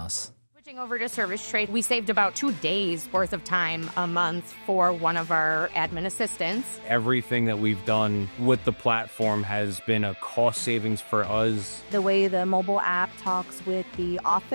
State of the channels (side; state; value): both; inverted; correlation -1.00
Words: Switching over to service trade, we saved about 2 days worth of time a month for one of our admin assistants. Everything that we've done with the platform has been a cost savings for us. The way the mobile app talks with the